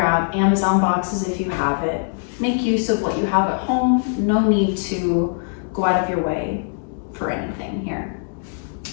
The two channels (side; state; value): right; silent; digital silence